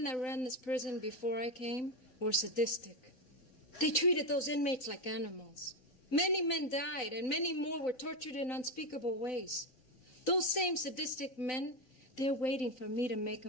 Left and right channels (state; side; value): late; right; 3.9 ms